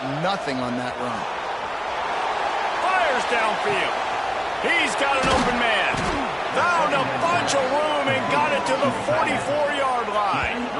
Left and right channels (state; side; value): identical; both; correlation 1.00